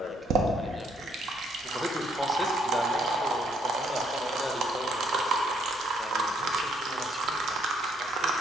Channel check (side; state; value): both; normal; correlation 0.69